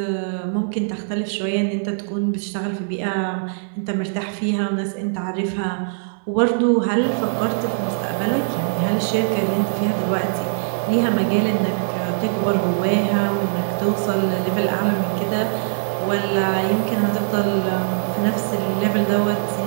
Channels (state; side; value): silent; left; digital silence